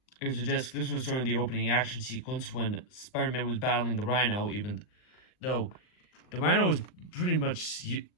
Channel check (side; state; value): right; late; 39 ms